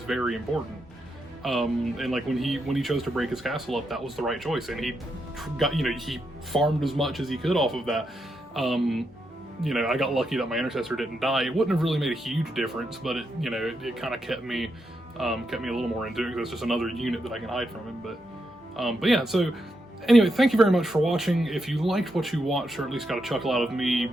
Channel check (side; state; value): both; normal; correlation 0.83